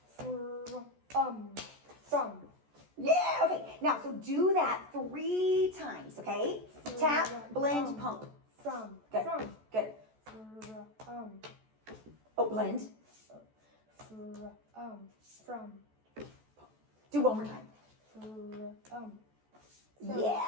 From. Yeah. Okay. Now, so do that 3 times. Okay. Tap, blend, pump. From. Good. From. Good. Oh, blend. From. Do one more time. From.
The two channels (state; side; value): late; left; 14 ms